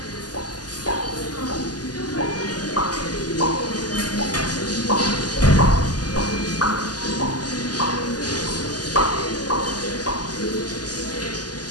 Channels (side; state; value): right; late; 0.69 ms